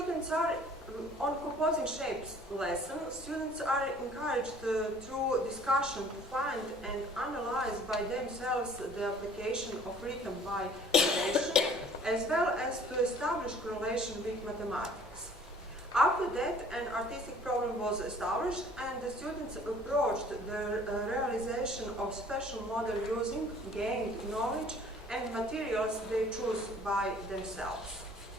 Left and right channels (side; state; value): both; normal; correlation 0.53